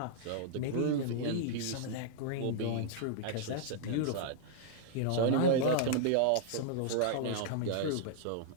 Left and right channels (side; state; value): both; different; correlation -0.01